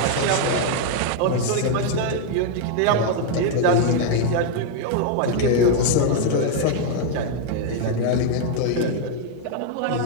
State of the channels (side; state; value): both; different; correlation 0.00